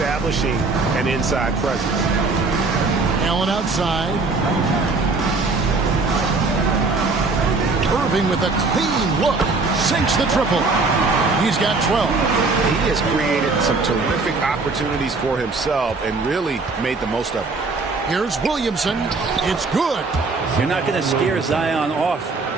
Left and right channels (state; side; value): quieter; left; 3.8 dB